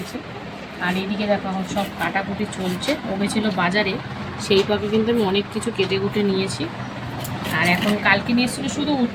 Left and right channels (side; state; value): both; identical; correlation 1.00